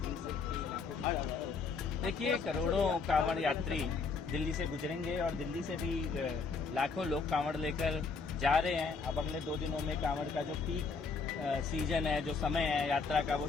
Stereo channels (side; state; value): right; quieter; 4.8 dB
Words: देखिए, करोड़ों कांवड़ यात्री दिल्ली से गुजरेंगे और दिल्ली से भी लाखों लोग कांवड़ लेकर जा रहे हैं। अब अगले 2 दिनों में कांवड़ का जो पीक सीजन है, जो समय है यात्रा का, वो